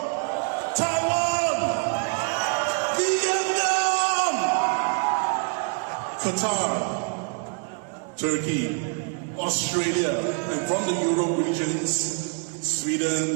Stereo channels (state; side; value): quieter; left; 38.2 dB